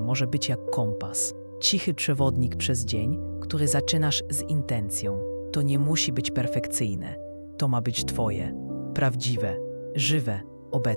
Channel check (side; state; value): both; inverted; correlation -1.00